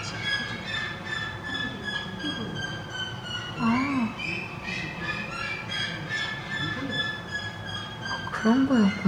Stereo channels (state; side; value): identical; both; correlation 1.00